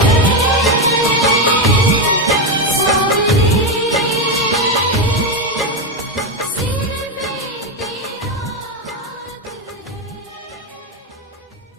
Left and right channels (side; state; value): both; normal; correlation 0.09